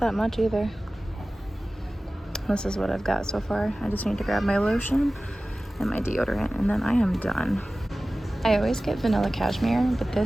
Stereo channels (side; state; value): both; normal; correlation 0.97